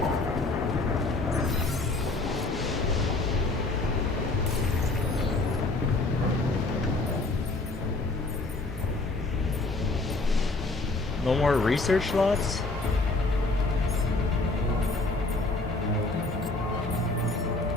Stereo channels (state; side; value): quieter; right; 3.2 dB